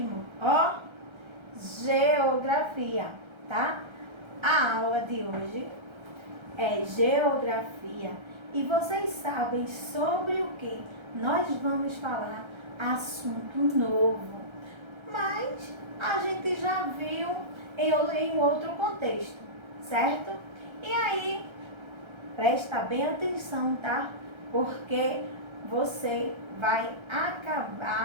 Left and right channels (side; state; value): left; late; 1.3 ms